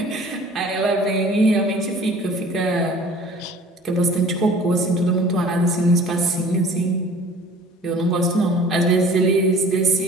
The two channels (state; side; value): normal; both; correlation 0.47